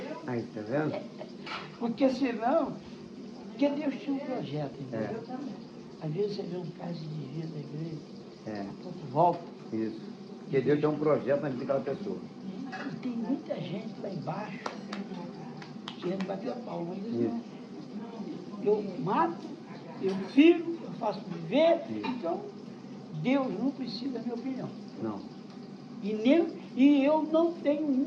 Aí, tá vendo? Porque senão, porque Deus tinha um projeto, entendeu? Às vezes você vê um caso de vida da igreja, a pouco volta. Isso. Porque Deus tem um projeto na vida daquela pessoa. E tem muita gente lá embaixo querendo bater a palma. Não. Eu mato, eu firo, eu faço viver, então Deus não precisa da minha opinião. Não. E eu não tenho o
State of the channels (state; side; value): identical; both; correlation 1.00